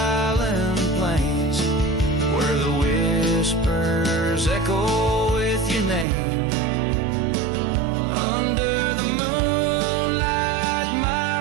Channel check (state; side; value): drops out; left; at 6.1 s